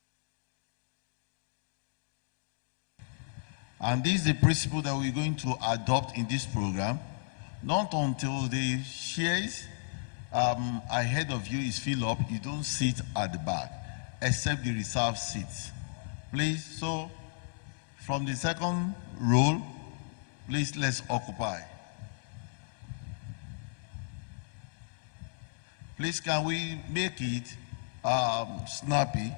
And this is the principle that we're going to adopt in this program. Not until the chairs ahead of you is filled up, you don't sit at the back, except the reserved seats. Please, so from the second row, please let's occupy. Please, can we make it snappy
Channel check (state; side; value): silent; right; digital silence